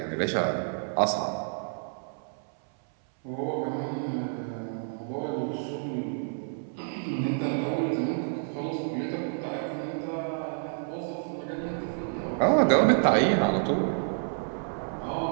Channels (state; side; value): silent; left; 59 dB below the other